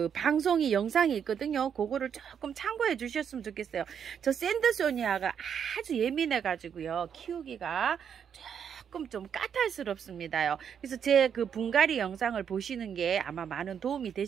방송이 영상이 있거든요. 그거를 조금 참고해 주셨으면 좋겠어요. 저 샌드소니아가 아주 예민해 가지고요, 키우기가 조금 좀 까탈스럽습니다요. 그래서 제 그 분갈이 영상을 보시는 게 아마 많은 도움이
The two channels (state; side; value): quieter; left; 7.9 dB